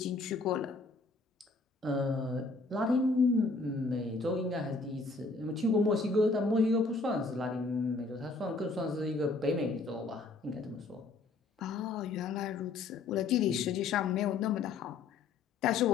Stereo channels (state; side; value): quieter; right; 3.7 dB